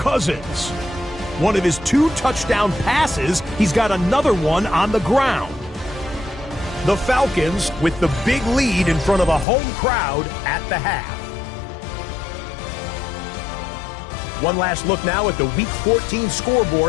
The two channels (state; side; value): drops out; right; at 9.5 s